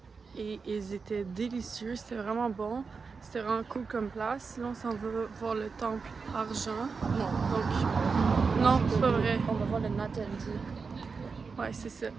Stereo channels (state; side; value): quieter; left; 4.9 dB